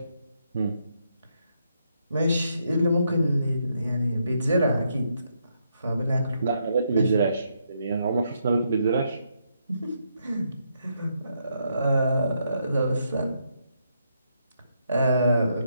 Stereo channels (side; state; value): both; inverted; correlation -0.78